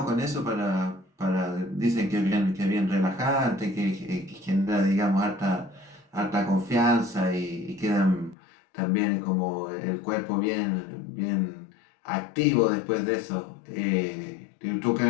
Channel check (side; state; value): right; drops out; at 8.3 s